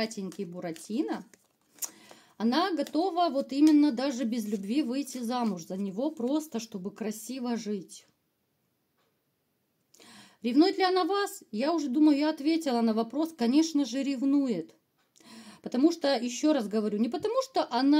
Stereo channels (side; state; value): both; identical; correlation 1.00